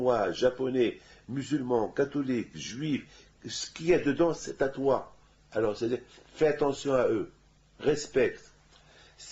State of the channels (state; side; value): identical; both; correlation 1.00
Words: japonais, musulmans, catholiques, juifs, ce qu'il y a dedans, c'est à toi. Alors, c'est-à-dire, fais attention à eux, respecte.